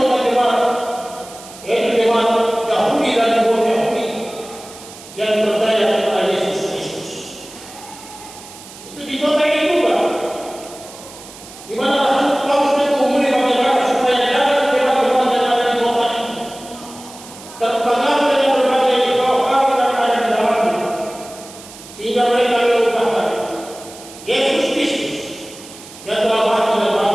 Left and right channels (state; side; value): noise; right; hiss, 18 dB below the sound